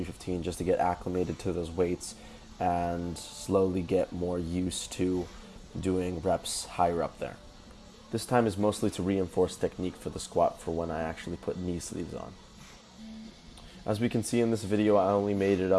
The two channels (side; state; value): both; identical; correlation 1.00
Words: just to get acclimated to those weights and slowly get more used to doing reps higher up there. This time is mostly to reinforce technique for the squat for when I actually put knee sleeves on. As we can see in this video, I only made it